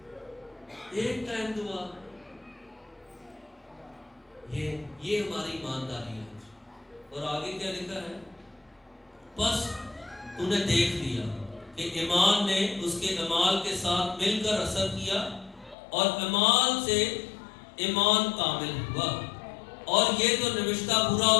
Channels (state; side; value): drops out; right; at 15.8 s